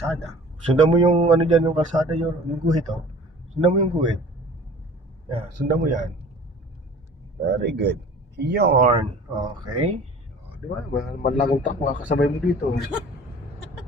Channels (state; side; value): normal; both; correlation 0.46